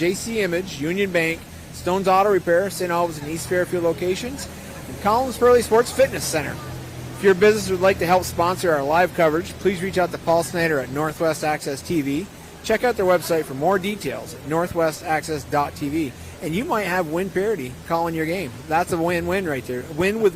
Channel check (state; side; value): identical; both; correlation 1.00